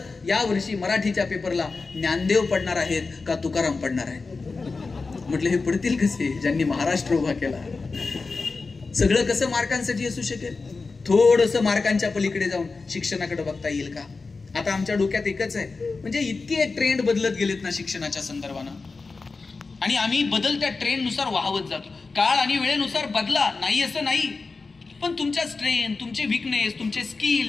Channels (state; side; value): quieter; right; 4.1 dB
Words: या वर्षी मराठीच्या पेपरला ज्ञानदेव पडणार आहेत का तुकाराम पडणार आहेत? म्हटलं हे पडतील कसे ज्यांनी महाराष्ट्र उभा केला. सगळं कसं मार्कांसाठी असू शकेल? थोडस मार्कांच्या पलीकडे जाऊन शिक्षणाकडे बघता येईल का? आता आमच्या डोक्यात एकच आहे, म्हणजे इतके ट्रेंड बदलत गेलेत ना शिक्षणाच्या संदर्भानं, आणि आम्ही बदलत्या ट्रेंडनुसार वाहवत जातो. काळ आणि वेळेनुसार बदला, नाही असं नाही, पण तुमच्या स्ट्रेंथ, तुमचे विकनेस, तुमचे